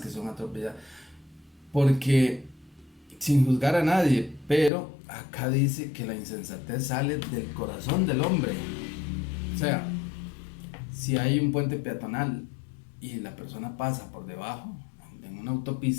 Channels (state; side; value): drops out; right; at 4.7 s